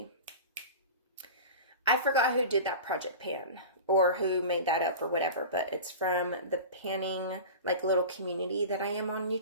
I forgot who did that project pan, or who made that up, or whatever, but it's from the panning, like, little community that I am on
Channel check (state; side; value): inverted; both; correlation -0.32